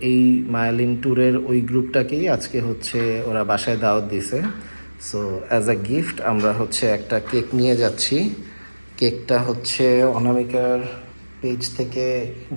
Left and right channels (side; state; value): both; inverted; correlation -1.00